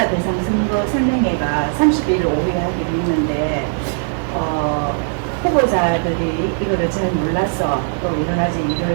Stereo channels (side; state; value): left; silent; 56 dB below the other